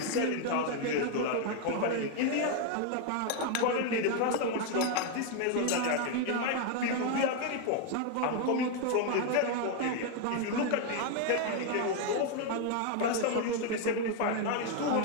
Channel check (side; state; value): both; different; correlation 0.01